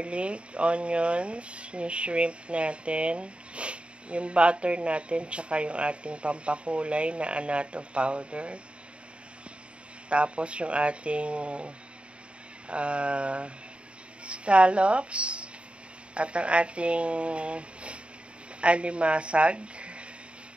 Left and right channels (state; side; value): late; left; 0.058 ms